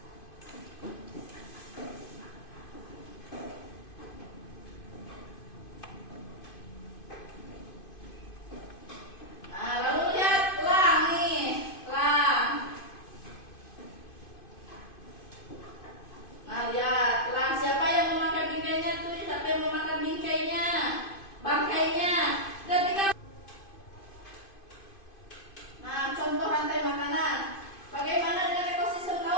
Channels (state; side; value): late; right; 2.5 ms